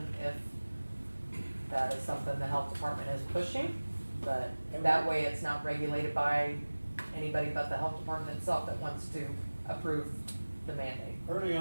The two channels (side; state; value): both; inverted; correlation -1.00